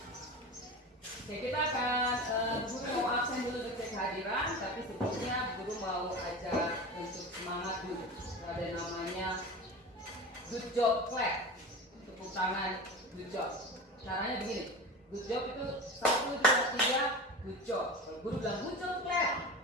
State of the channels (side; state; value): both; normal; correlation 0.29